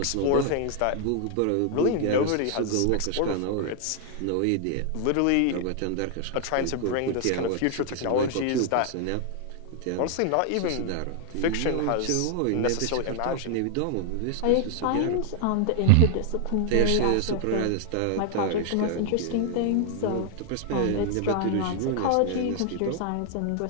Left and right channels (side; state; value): both; different; correlation 0.00